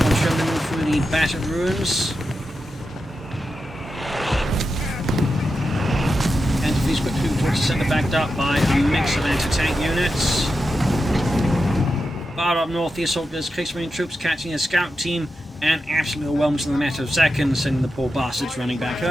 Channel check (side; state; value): both; normal; correlation 0.89